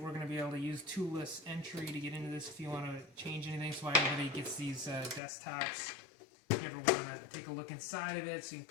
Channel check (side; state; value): right; drops out; at 5.2 s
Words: going to be able to use toolless entry to get into this if you want to change anything. So why everybody gets these desktops. If you ever want to take a look inside of it, so you can